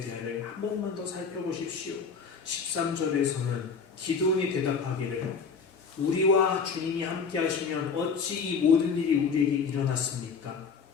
대화를 한 번만 더 살펴보십시오. 13절에서는 기드온이 대답하기를 우리와 주님이 함께 하시면 어찌 이 모든 일이 우리에게 일어났습니까?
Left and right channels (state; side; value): quieter; right; 5.5 dB